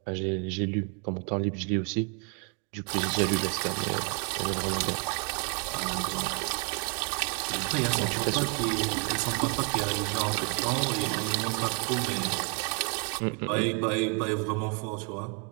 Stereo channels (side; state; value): left; quieter; 35.3 dB